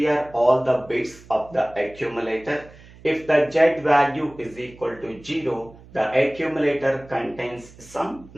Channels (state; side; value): noise; right; hum, 22 dB below the sound